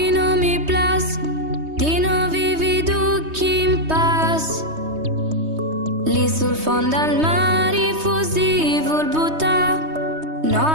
non mi plas di non vivi ducchi in pace. Lì sul fondo al mare fusivo il buttà no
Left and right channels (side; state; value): left; late; 3.2 ms